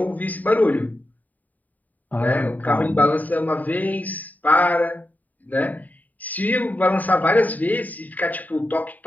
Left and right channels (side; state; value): right; late; 0.079 ms